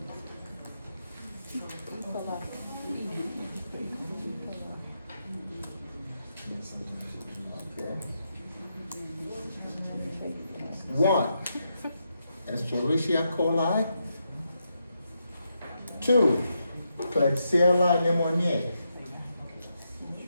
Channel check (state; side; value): inverted; both; correlation -0.83